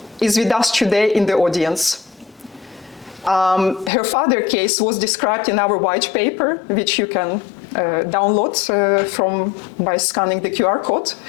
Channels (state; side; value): drops out; right; at 3.9 s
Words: is with us today in the audience. Her father's case was described in our white paper, which you can download by scanning the QR code.